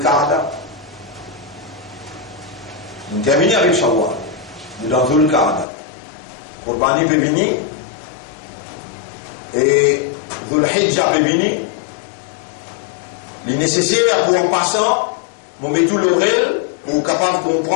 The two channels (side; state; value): right; drops out; at 5.7 s